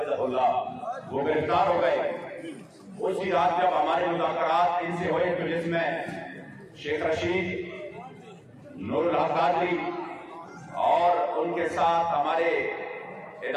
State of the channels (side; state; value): both; identical; correlation 1.00